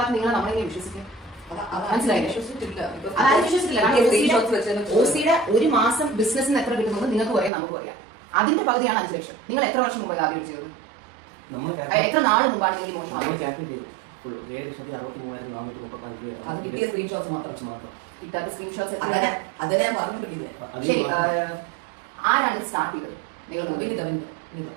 നിങ്ങൾ നമ്മളെങ്ങനെ വിശ്വസിക്കും? മനസ്സിലായില്ലേ? OCയുടെ ഒരു മാസം ബിസിനസ്സിന് എത്ര കിട്ടുന്നത് നിങ്ങൾക്ക് പറയാം, നമുക്ക് പറയാം. അതിന്റെ പകുതിയാണ് 5 ലക്ഷം. നിങ്ങൾ എത്ര വർഷം മുമ്പ് ആദ്യം ചെയ്തത്? എത്ര നാൾ മുമ്പാണ് നിങ്ങൾ മോശം? അത് കിട്ടിയ സ്ക്രീൻഷോട്ട്സ് മാത്രം, കിട്ടാത്ത സ്ക്രീൻഷോട്ട്സ് അതിനെ ഞാൻ പറഞ്ഞിട്ടില്ല. ശരി, ആരാണ് സ്റ്റാർട്ട് ചെയ്തത്? നിങ്ങൾ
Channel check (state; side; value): drops out; left; at 7.5 s